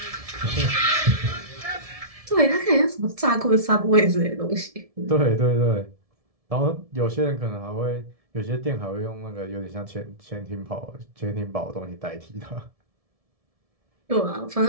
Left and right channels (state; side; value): late; left; 1.7 ms